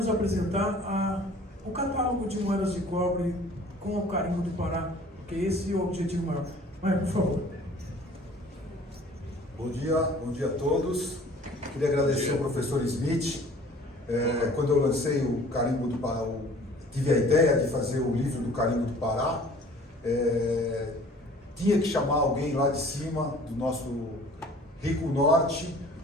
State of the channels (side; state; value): both; normal; correlation 0.50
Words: apresentar o catálogo de moedas de cobre com o carimbo do Pará, porque esse é o objetivo maior. Maier, por favor. Bom dia a todos. Queria agradecer ao professor Smith. Quando eu lancei o carimbo do Pará, tive a ideia de fazer o livro do carimbo do Pará. Tinha que chamar alguém lá de cima, do nosso rico norte,